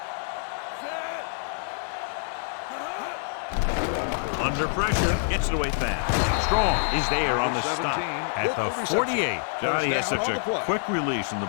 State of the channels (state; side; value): silent; right; digital silence